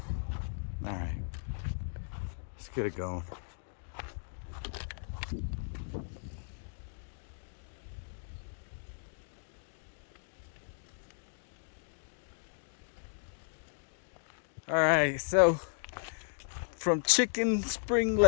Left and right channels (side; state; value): right; silent; digital silence